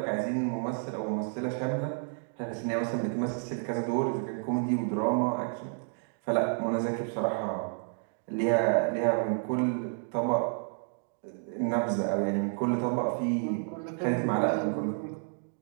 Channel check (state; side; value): silent; left; 57 dB below the other